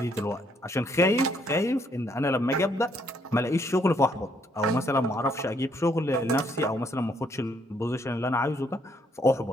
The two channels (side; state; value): both; normal; correlation 0.70